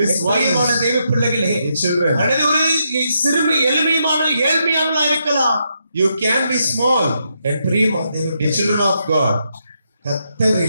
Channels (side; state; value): both; inverted; correlation -0.80